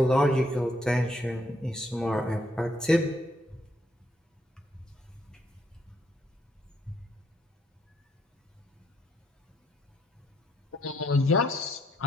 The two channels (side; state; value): both; normal; correlation 0.72